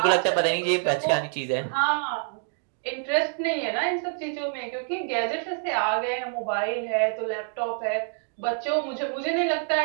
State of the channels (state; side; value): silent; left; 61 dB below the other